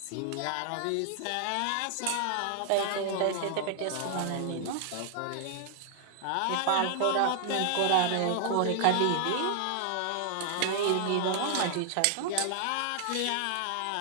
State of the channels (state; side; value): different; both; correlation 0.00